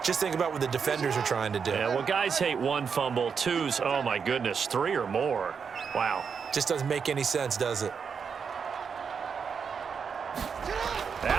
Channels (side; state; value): left; quieter; 6.2 dB